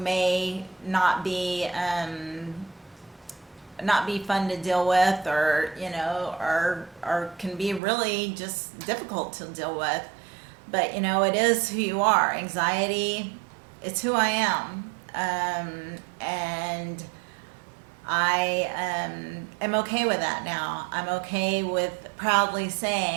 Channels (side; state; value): left; drops out; at 7.8 s